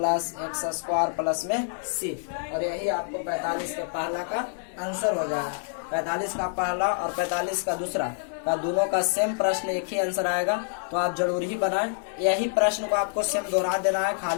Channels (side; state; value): right; silent; digital silence